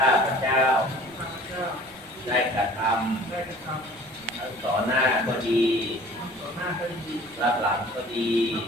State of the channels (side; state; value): right; noise; rumble, 28 dB below the sound